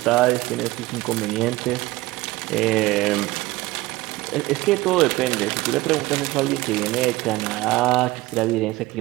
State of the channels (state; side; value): quieter; left; 19.4 dB